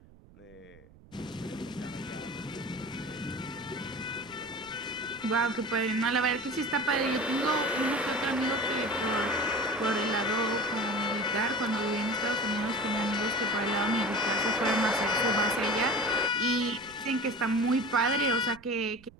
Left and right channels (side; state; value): right; noise; rumble, 24 dB below the sound